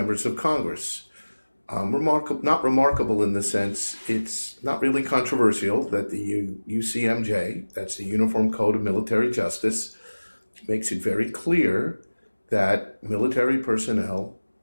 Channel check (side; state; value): both; inverted; correlation -1.00